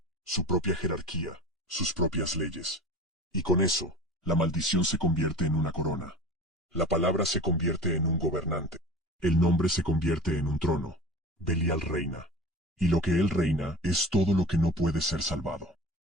su propia jerarquía, sus propias leyes. Y con eso, la maldición se convierte en una corona. La palabra se convierte en un gobernante. El nombre se convierte en un trono. Belial reina. Y lo que él reina es todo lo que no puede ser salvado.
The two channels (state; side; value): normal; both; correlation 0.37